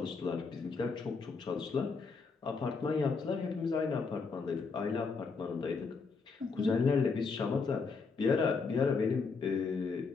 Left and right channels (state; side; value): quieter; right; 4.7 dB